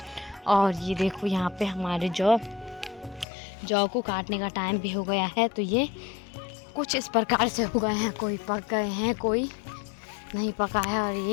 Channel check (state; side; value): drops out; right; at 3.2 s